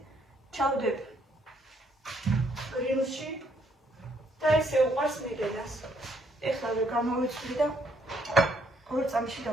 ჩავდებ გრილში და ესე უყარს მიდედას. ეხლა გამოვიცვლი და 2 წამში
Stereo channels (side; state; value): both; normal; correlation 0.70